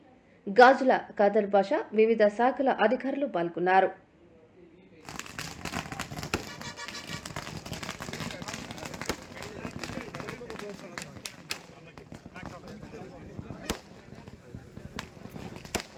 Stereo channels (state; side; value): identical; both; correlation 1.00